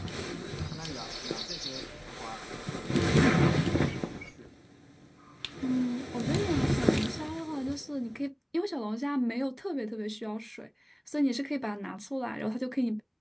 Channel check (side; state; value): both; identical; correlation 1.00